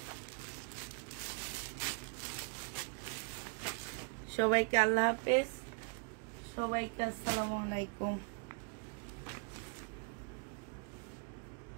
সবাইকে আল্লাহ হাফেজ, সবাইকে আসসালামু আলাইকুম।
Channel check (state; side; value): quieter; left; 38.7 dB